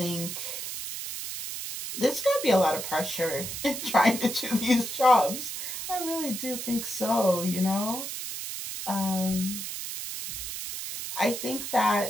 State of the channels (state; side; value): noise; right; hiss, 6 dB below the sound